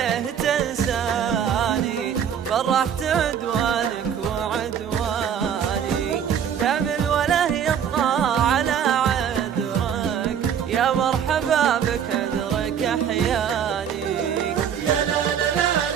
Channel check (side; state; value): left; quieter; 8.4 dB